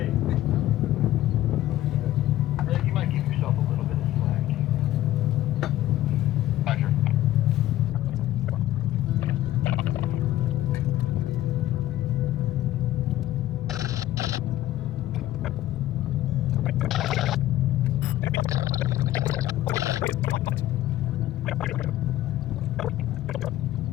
Rick, you might give yourself a little bit of slack. Roger.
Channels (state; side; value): quieter; right; 14.2 dB